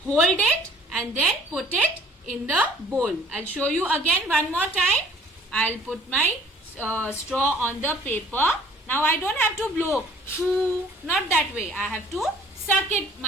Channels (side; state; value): both; normal; correlation 0.55